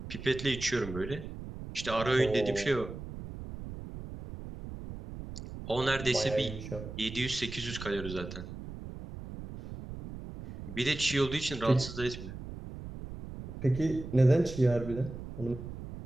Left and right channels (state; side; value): noise; right; rumble, 10 dB below the sound